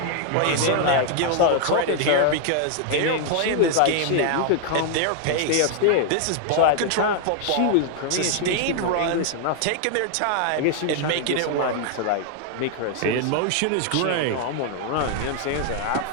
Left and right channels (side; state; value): both; different; correlation 0.00